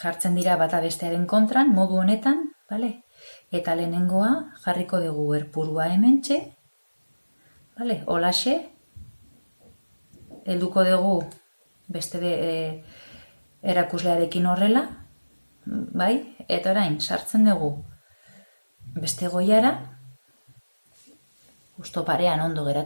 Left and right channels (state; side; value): inverted; both; correlation -1.00